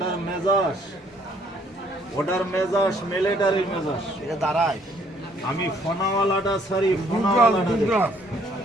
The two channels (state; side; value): normal; both; correlation 0.64